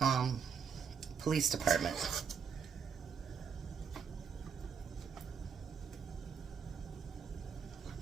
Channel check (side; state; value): left; quieter; 6.6 dB